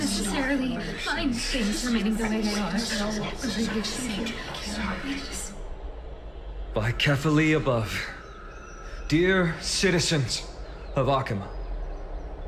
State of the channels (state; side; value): identical; both; correlation 1.00